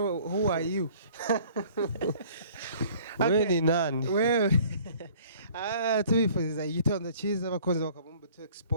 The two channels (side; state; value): both; inverted; correlation -0.53